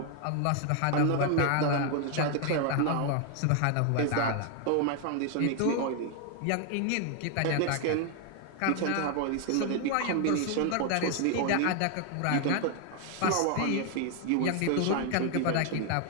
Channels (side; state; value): both; different; correlation 0.00